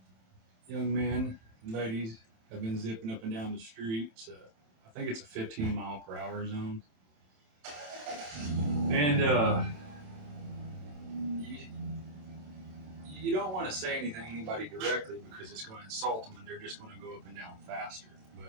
young men and ladies, have been zipping up and down the streets. I think it's a 15 mile per hour zone, and you, you don't want to say anything to anybody directly because it's going to insult them, and they're just going to go up and down faster.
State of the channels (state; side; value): late; left; 27 ms